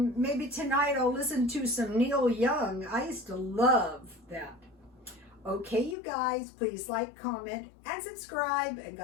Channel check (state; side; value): drops out; right; at 6.0 s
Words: maybe tonight I'll listen to some Neil Young. I used to love that. Okay, you guys, please like, comment, and subscribe, and